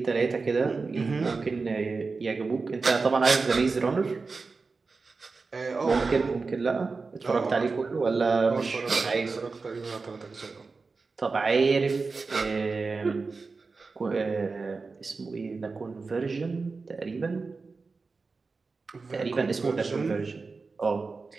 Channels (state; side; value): quieter; left; 4.2 dB